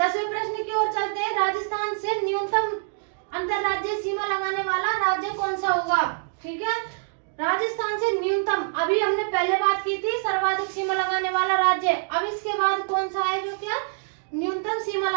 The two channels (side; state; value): left; silent; digital silence